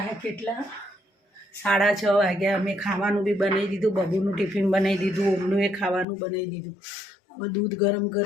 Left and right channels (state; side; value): drops out; right; at 6.1 s